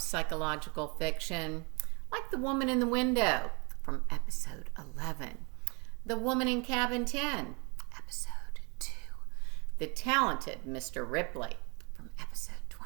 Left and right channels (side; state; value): left; quieter; 32.0 dB